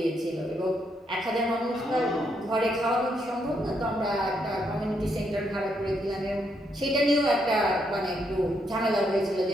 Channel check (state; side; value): normal; both; correlation 0.77